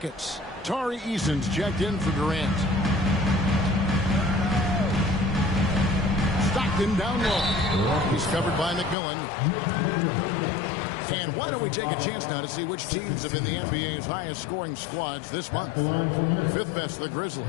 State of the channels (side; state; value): right; drops out; at 9.0 s